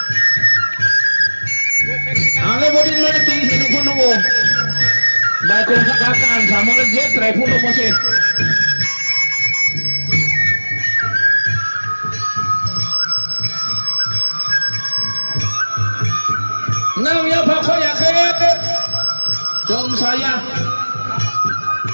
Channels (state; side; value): inverted; both; correlation -1.00